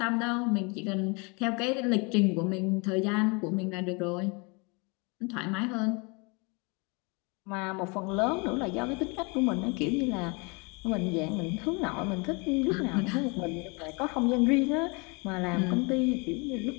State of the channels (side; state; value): right; quieter; 30.5 dB